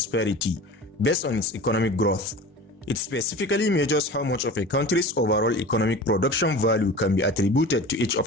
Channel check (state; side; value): normal; both; correlation 0.36